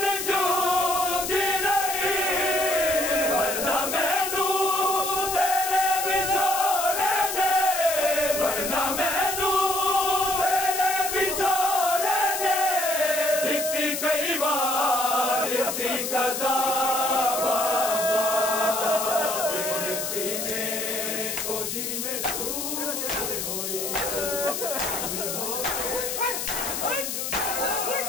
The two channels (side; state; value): left; noise; hiss, 3 dB below the sound